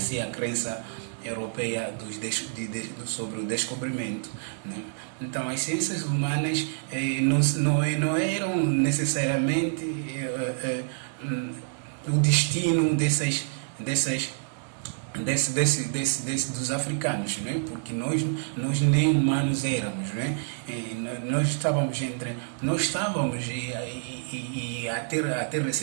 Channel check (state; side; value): silent; left; digital silence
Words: a crença europeia sobre o descobrimento, né? Então, as ciências humanas não eram necessariamente o destino dos africanos, né? Porque nós nem humanos éramos, né? Nós estávamos e até